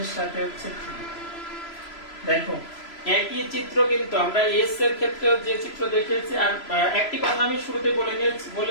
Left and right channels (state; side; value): late; right; 3.0 ms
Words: সাথে হচ্ছে 3। দেখো একই চিত্র কিন্তু আমরা এস এর ক্ষেত্রেও যে চিত্র দেখেছি। আর একটি কথা আমি শুরুতে